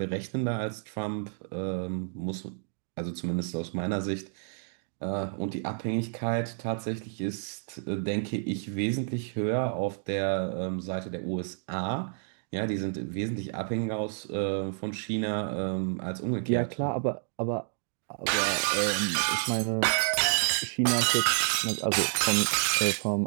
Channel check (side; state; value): left; silent; digital silence